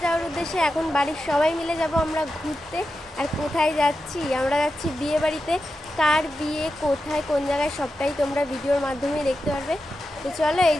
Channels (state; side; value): normal; both; correlation 0.90